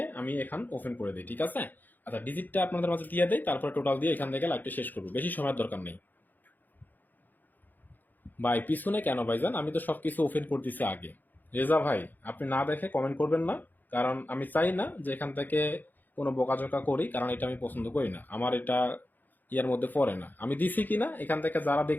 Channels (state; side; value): late; right; 0.086 ms